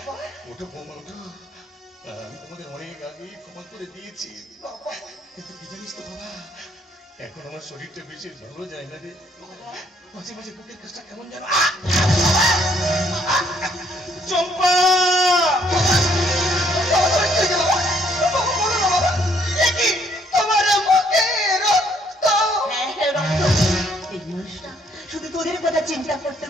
ওঠো বৌমা, ওঠো। আমি তোমাদের অনেক আগেই ক্ষমা করে দিয়েছি, কিন্তু কি জানিস তো বাবা, এখন আমার শরীরটা বেশি ভালো যায় না রে। মাঝে মাঝে বুকের কাজটা কেমন যেন। চম্পা, এই মানুষটা শুধু তোদের কথা চিন্তা করতে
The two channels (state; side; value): normal; both; correlation 0.67